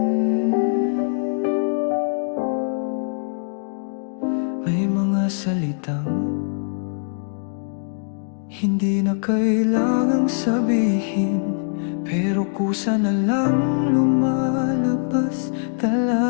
May mga salitang hindi na kailangang sabihin, pero kusa na lang lumalabas,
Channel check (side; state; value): right; silent; digital silence